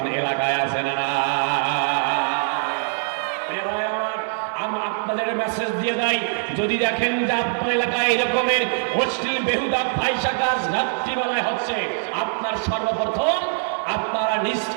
এলাকায় আছে না? আপনাদের মেসেজ দিয়ে দেয়, যদি দেখেন যে আপনার এলাকায় এরকমের অশ্লীল বেহুদা ফাহিশা কাজ রাত্রিবেলায় হচ্ছে, আপনার সর্বপ্রথম আপনারা নিজ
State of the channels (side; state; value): left; silent; digital silence